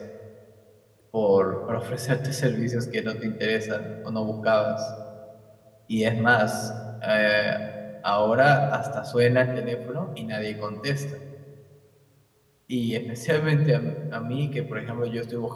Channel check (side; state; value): both; identical; correlation 1.00